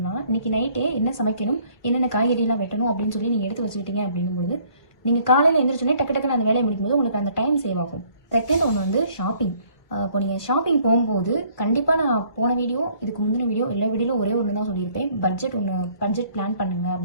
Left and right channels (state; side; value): late; right; 2.0 ms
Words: இன்றைக்கி நைட்டே என்ன சமைக்கணும், என்னென்ன காய்கறிலாம் வெட்டணும் அப்படின்னு சொல்லி நீங்கள் எடுத்து வச்சுக்கிட்டீங்க அப்படிங்கும்போது, நீங்கள் காலையில் எழுந்திரிச்சோன்னே டக்கு டக்குன்னு அந்த வேலையை முடிக்கும்போது உங்களுக்கு அந்த டைம் சேவ் ஆகும். செகண்ட் ஒன்று வந்து ஷாப்பிங். இப்போ நீங்கள் ஷாப்பிங் போகும்போது கண்டிப்பாக நான் போன வீடியோ, இதுக்கு முந்தின வீடியோ, எல்லா வீடியோவில் ஒரே ஒன்று தான் சொல்லியிருப்பேன். பட்ஜெட் பிளான் பண்ணுங்க